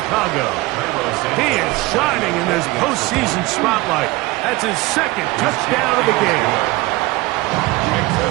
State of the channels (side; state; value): left; quieter; 20.9 dB